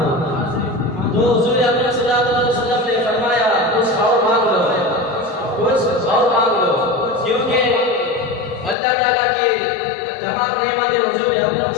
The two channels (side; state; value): right; drops out; at 8.8 s